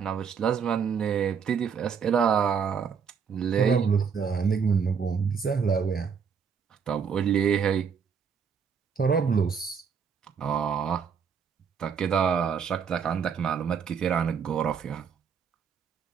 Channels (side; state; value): left; quieter; 6.5 dB